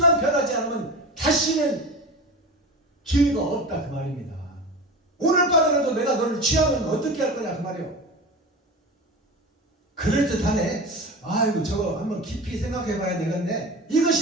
변하지 않으면 다시는 기회가 없다 그 말입니다. 오늘 밤에라도 내가 너를 취하면 어떻게 할 거냐 그 말이에요. 그럴듯하네. 아이고 저거 한번 깊이 생각해 봐야 되겠네.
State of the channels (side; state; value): both; normal; correlation 0.30